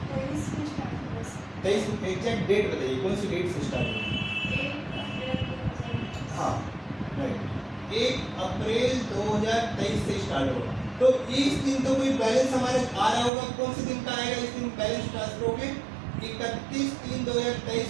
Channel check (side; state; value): left; drops out; at 13.3 s